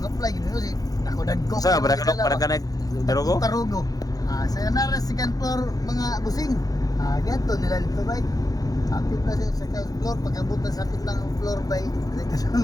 Mga fly gid si ako dagko. Saan ba? Para ka nag-tarugo? Tarugo. Sa nara second floor mga busing. Ganto nila dito bay. Hapit na siya sa second floor, pagkabutan sa hapit lang ang floor bay,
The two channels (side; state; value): right; late; 0.18 ms